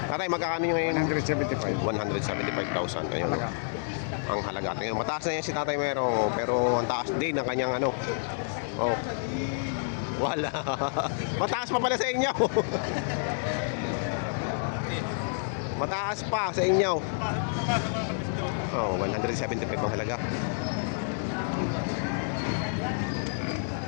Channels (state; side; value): silent; right; digital silence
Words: Tatay, magkakano nyo ngayon? 175. 175,000. Ayun, no. Ang halaga. Tingnan, mataas na yan si Tatay Merong, oh, pero ang taas din ng kanyang ano. Oh. Wala. Mataas pa pala sa inyo. Mataas pa sa inyo. Oh, 175 ang halaga.